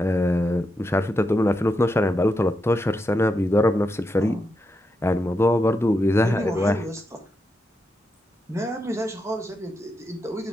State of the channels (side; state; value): both; normal; correlation 0.85